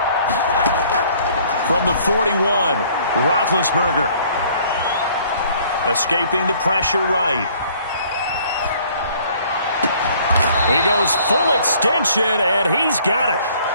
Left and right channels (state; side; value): inverted; both; correlation -0.58